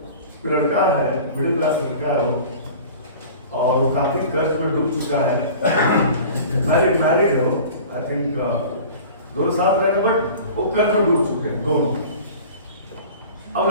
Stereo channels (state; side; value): inverted; both; correlation -0.41